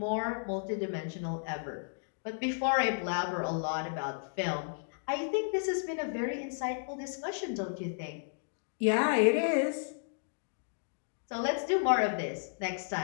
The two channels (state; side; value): silent; right; digital silence